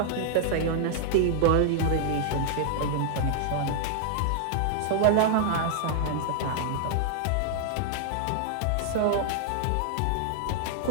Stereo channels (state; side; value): different; both; correlation 0.00